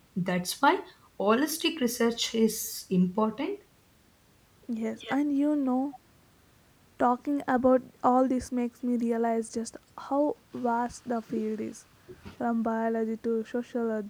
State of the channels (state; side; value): identical; both; correlation 1.00